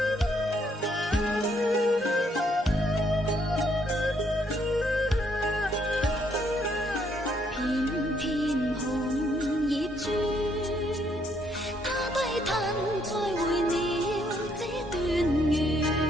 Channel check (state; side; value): normal; both; correlation 0.70